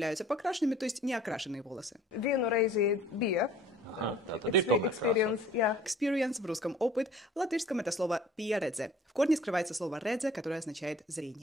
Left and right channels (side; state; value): both; normal; correlation 0.51